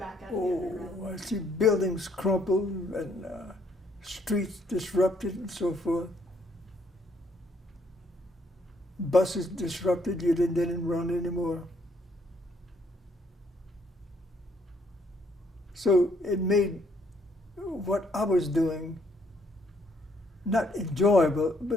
out of the underground? I see buildings crumpled and streets disrupted and so forth. Buses disrupted, you didn't run anymore. So it made what I was doing not enjoyable,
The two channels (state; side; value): normal; both; correlation 0.69